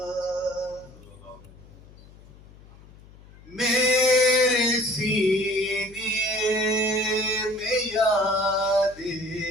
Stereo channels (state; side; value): noise; left; hum, 23 dB below the sound